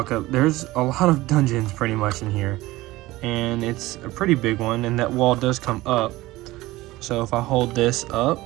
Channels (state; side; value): quieter; left; 18.4 dB